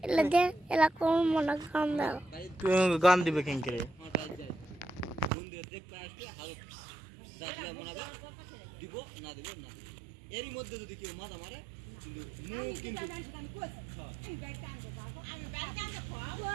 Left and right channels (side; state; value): left; drops out; at 5.3 s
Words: এলা দে এলা কোন মনে গান দাও, গান দিবে কেন করে? মন্দিরে দেখতে আসবে হাল রাতলে মনাবে দিব না দিব না, এরই মধ্যে যদি কেউ মাথা মারে কিন্তু মুখ কিন্তু